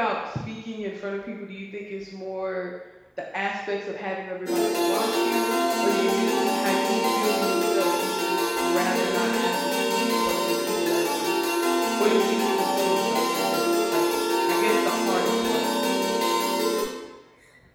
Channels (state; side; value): identical; both; correlation 1.00